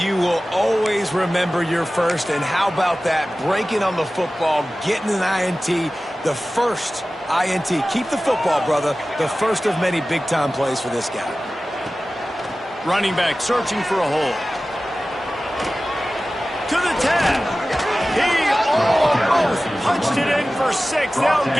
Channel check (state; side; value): normal; both; correlation 0.96